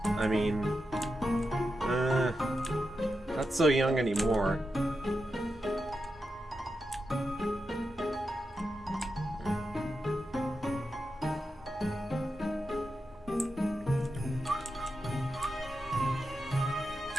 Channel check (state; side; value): normal; both; correlation 0.88